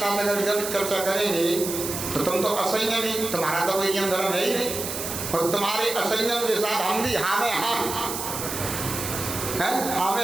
अगर जब चर्चा करेंगे तो तुम तो असंयमी, तुम्हारा तो कोई नियम धर्म है ही नहीं, और तुम्हारे असंयम के साथ हम भी हाँ में हाँ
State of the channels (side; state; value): right; noise; hiss, 5 dB below the sound